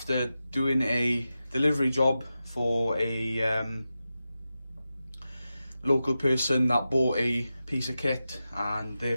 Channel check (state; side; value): inverted; both; correlation -0.92